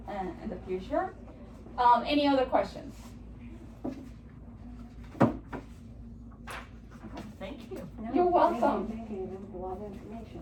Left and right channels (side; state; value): both; identical; correlation 1.00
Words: the future. Any other questions? Thank you. No, You're welcome. Thank you, that was a lot of